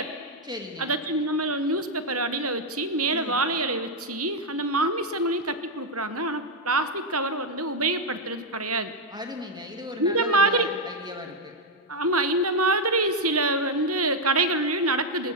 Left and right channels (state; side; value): normal; both; correlation 0.00